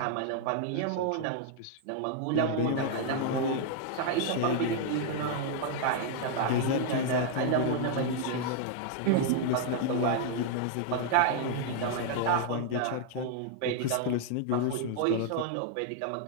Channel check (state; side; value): different; both; correlation 0.00